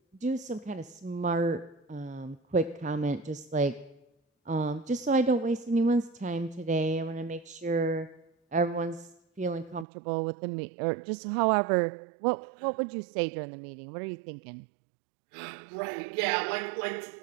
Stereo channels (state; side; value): drops out; left; at 9.9 s